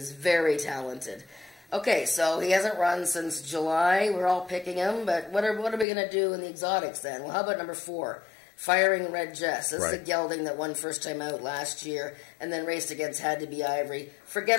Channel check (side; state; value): right; drops out; at 5.9 s